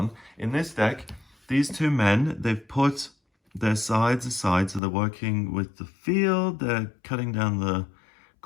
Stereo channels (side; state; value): right; drops out; at 4.8 s